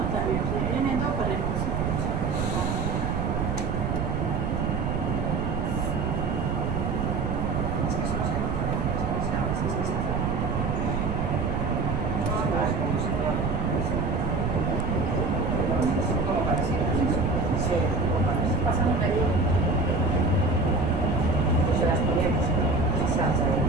también, si vienen dos para el pasan una ayuda. Pues se las ponemos, se salsa de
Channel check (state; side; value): noise; right; rumble, 1 dB below the sound